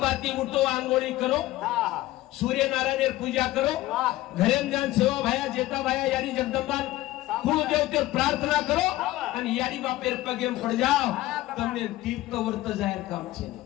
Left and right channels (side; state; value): right; quieter; 16.5 dB